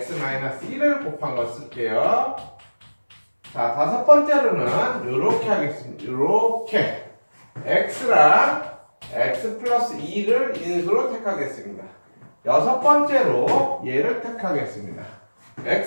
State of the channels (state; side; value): inverted; both; correlation -1.00